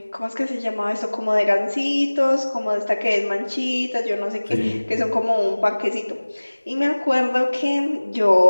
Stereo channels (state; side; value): inverted; both; correlation -1.00